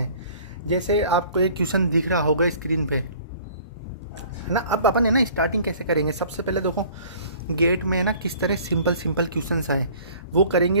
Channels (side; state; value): both; inverted; correlation -0.50